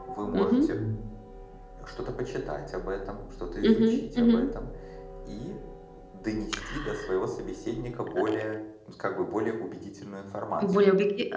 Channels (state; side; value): identical; both; correlation 1.00